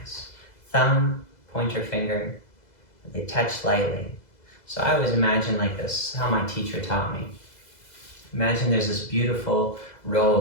Thumb, pointer finger, they touch lightly. So I always imagine like this, how my teacher taught me. Imagine there's this beautiful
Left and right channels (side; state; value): right; late; 2.0 ms